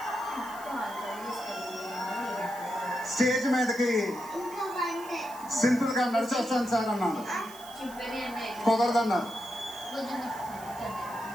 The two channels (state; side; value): noise; right; hiss, 19 dB below the sound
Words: స్టేజ్ మీదకి సింపుల్ గా నడిచొస్తాను సార్ అన్నాను, కుదరదన్నారు.